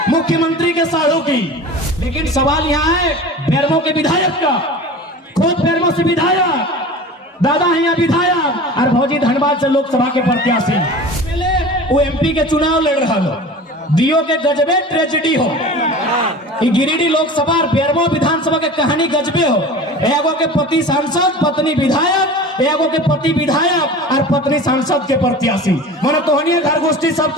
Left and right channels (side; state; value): both; normal; correlation 0.37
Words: मुख्यमंत्री के साढ़ू की, लेकिन सवाल यहाँ है बेरमो के विधायक का। खुद बेरमो से विधायक, दादा है यहाँ विधायक और भौजी धनबाद से लोकसभा के प्रत्याशी। वो एमपी के चुनाव लड़ रहा हो, दियो के गजबे ट्रेजेडी हो। गिरिडीह लोकसभा और बेरमो विधानसभा के कहानी गजबे हो। एगो के पति सांसद, पत्नी विधायक, एगो के पति विधायक और पत्नी सांसद के प्रत्याशी। मन तोहनी घर गोष्ठी सब